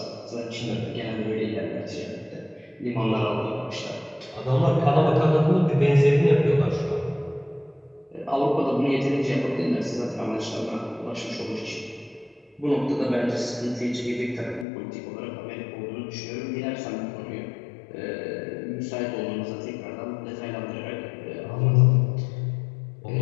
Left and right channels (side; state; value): right; drops out; at 14.7 s